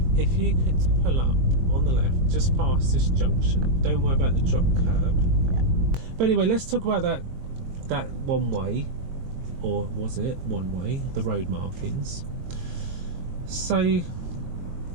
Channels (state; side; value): late; left; 22 ms